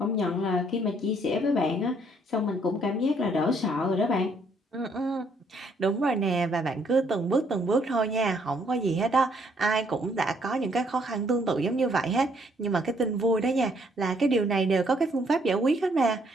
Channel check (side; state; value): both; normal; correlation 0.67